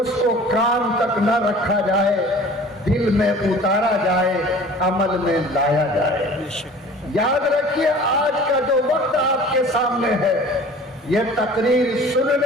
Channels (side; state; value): both; normal; correlation 0.45